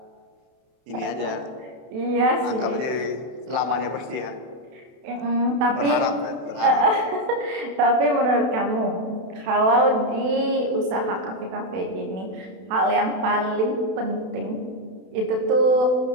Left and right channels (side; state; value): left; late; 32 ms